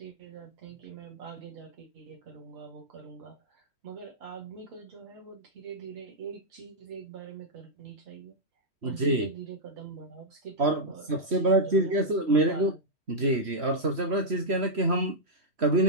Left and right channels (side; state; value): left; late; 3.1 ms